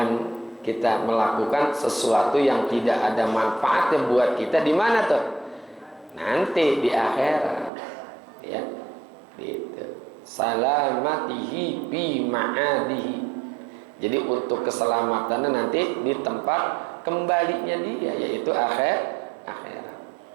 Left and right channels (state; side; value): drops out; left; at 7.7 s